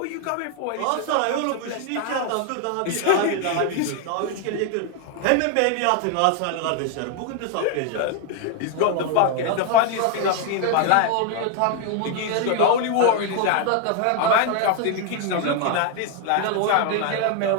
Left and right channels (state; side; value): different; both; correlation 0.01